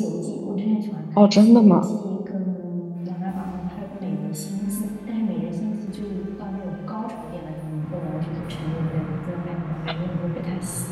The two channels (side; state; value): both; identical; correlation 1.00